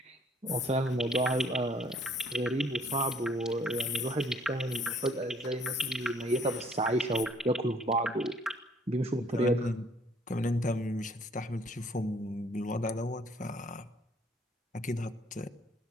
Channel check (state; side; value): normal; both; correlation 0.60